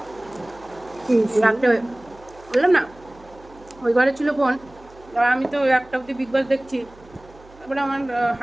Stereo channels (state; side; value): noise; right; hum, 24 dB below the sound